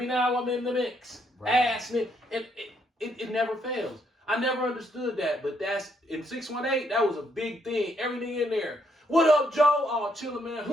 now? I'm in the mix. Right. Ass nigga. It never fails. I never understood that, but that's in 618. That was a big thing. Everything in there. What up, Joe? Oh, chillin', man.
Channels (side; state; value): both; normal; correlation 0.73